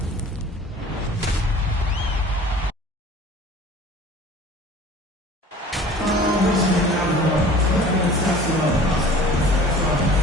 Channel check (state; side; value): normal; both; correlation 0.46